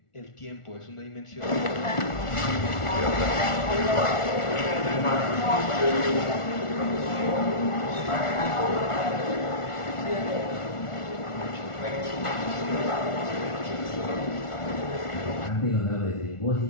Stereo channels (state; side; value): late; right; 1.4 ms